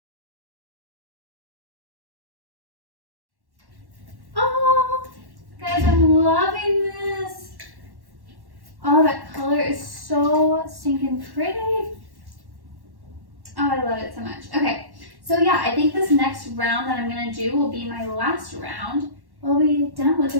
Oh, guys, I'm loving this. pretty. Oh, I love it so much. Okay, so yeah, I think this next round that I'm gonna do will be my last round. We'll be done with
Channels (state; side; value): late; left; 1.1 ms